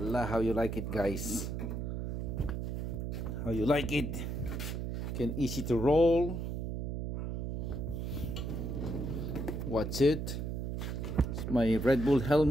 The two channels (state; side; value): noise; right; hum, 3 dB below the sound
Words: how you like it, guys? How you like it? Can easy to roll. What's it? It's my Red Bull